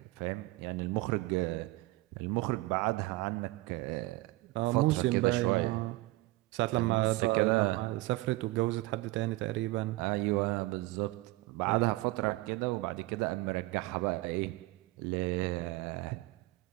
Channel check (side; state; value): left; quieter; 20.2 dB